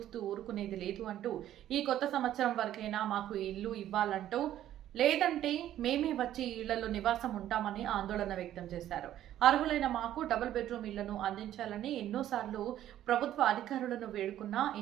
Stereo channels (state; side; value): quieter; left; 12.2 dB